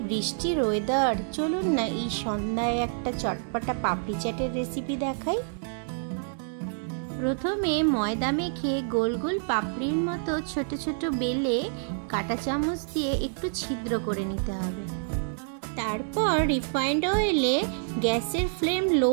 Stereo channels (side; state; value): left; silent; digital silence